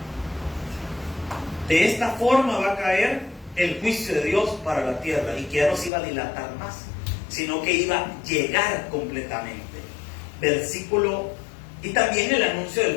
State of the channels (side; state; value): right; drops out; at 5.9 s